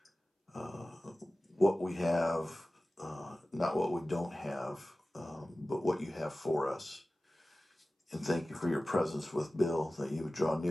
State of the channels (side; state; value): both; normal; correlation 0.96